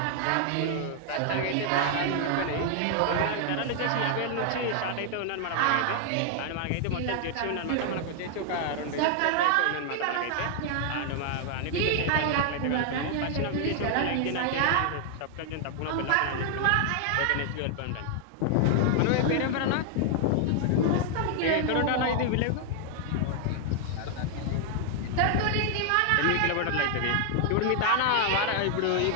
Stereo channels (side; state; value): both; different; correlation 0.00